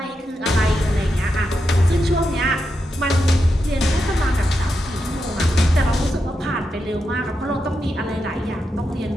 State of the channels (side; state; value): both; normal; correlation 0.86